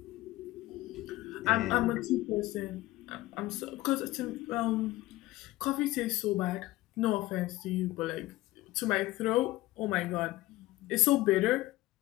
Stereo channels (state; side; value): quieter; right; 18.0 dB